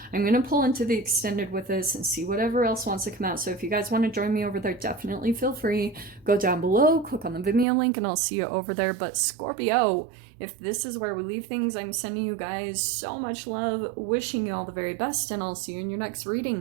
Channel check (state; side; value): drops out; left; at 7.7 s